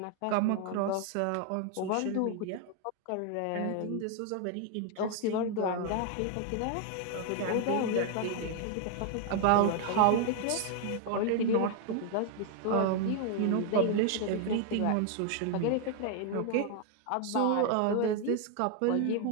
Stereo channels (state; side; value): different; both; correlation 0.01